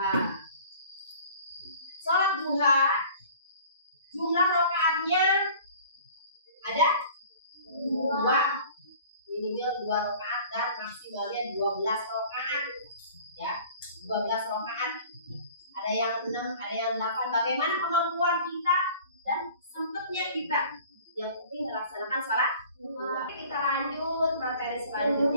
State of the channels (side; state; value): both; inverted; correlation -0.47